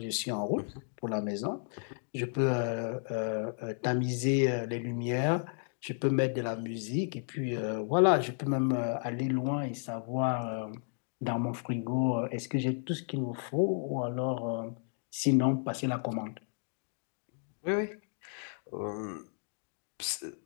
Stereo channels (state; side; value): silent; right; 56 dB below the other